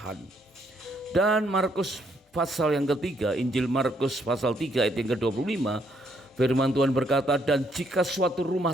Dan Markus pasal yang ketiga, Injil Markus pasal 3 ayat yang ke-25, firman Tuhan berkata, dan jika suatu rumah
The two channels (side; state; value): both; normal; correlation 0.71